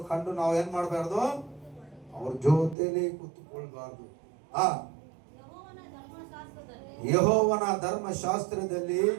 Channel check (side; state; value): left; drops out; at 2.8 s